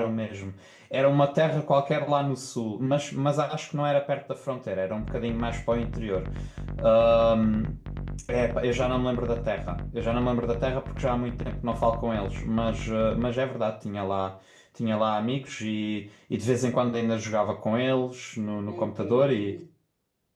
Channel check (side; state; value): both; identical; correlation 1.00